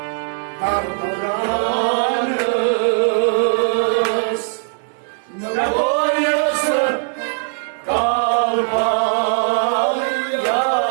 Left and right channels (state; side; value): silent; left; digital silence